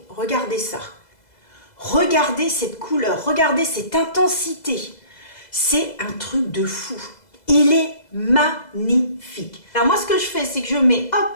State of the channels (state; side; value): late; right; 2.0 ms